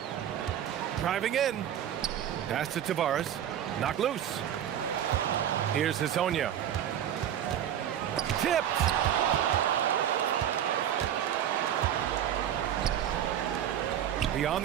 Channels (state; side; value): quieter; left; 10.3 dB